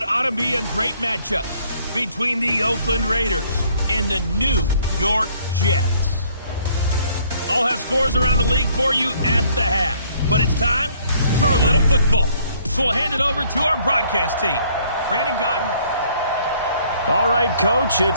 ought to be a great matchup between the Oakland Raiders and the New York Jets. I'll have scores around the league for you at the half, but it's time for a little football. So we'll hand it over to our broadcast team. Brandon Godden. All right, Coach,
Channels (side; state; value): both; inverted; correlation -0.62